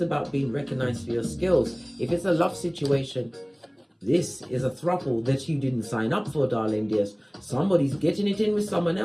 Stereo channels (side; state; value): both; identical; correlation 1.00